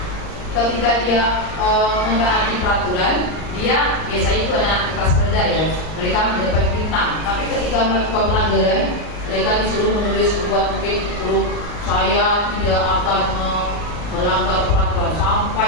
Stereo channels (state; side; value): late; right; 39 ms